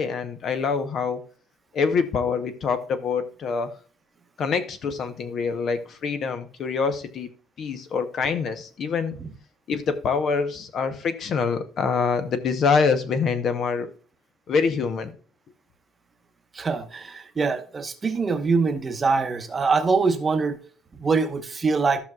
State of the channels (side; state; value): both; normal; correlation 0.69